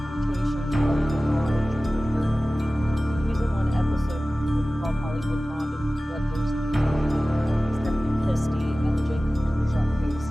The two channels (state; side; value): normal; both; correlation 0.97